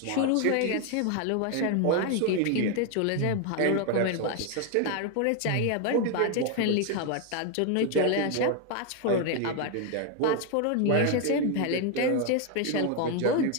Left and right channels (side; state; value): both; different; correlation 0.01